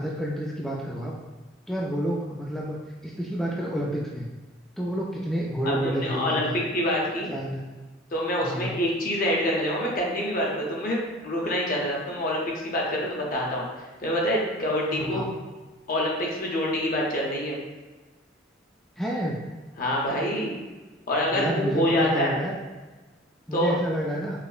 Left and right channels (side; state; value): both; normal; correlation 0.42